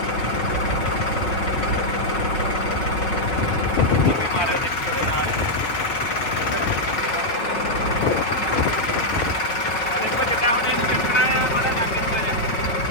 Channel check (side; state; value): right; late; 4.6 ms